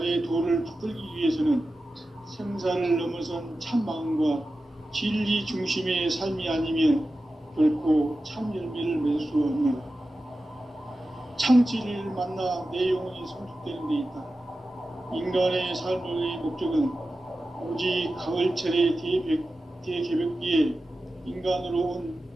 도를 붙들기 위해서는 생사를 넘어선 참 마음과 진리 중심의 삶이 아니면 결코 참 열매를 맺을 수 없노라. 참지를 만나 내 영혼이 성숙되는 데 있다. 인간의 삶의 목적은 오직 가을철의 대개벽기에 인간으로 온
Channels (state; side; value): normal; both; correlation 0.93